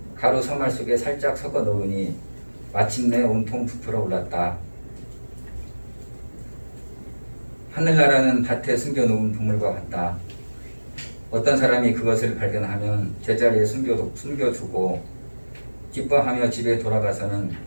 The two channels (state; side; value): inverted; both; correlation -1.00